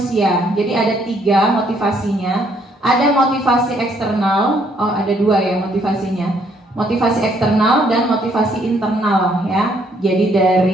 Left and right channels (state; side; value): normal; both; correlation 0.68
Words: Jadi ada 3 motivasinya. Ada motivasi eksternal, ada 2 ya motivasinya. Motivasi eksternal dan motivasi internal, ya. Jadi